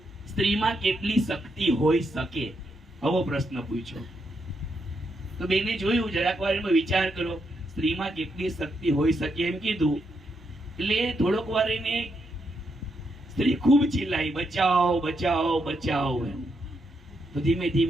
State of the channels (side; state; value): both; normal; correlation 0.80